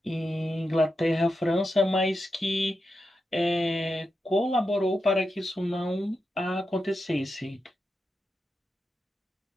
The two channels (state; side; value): normal; both; correlation 0.88